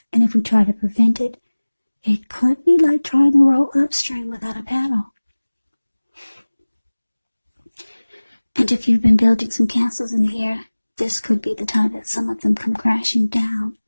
and if we try to prevent it, it could be like trying to row upstream without a paddle. And if you've been building some castles in the air, this could be the time that some of them come crashing down.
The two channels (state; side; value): inverted; both; correlation -1.00